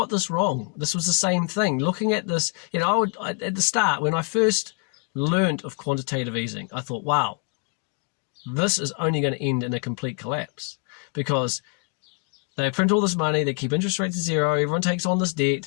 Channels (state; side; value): quieter; right; 34.6 dB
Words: this wrong. This was the same thing. Looking at this, at the start, when I first learned of quantitative easing, I thought, wow, this is only going to end in a complete collapse, because they print all this money, they keep interest rates at zero, everyone takes on this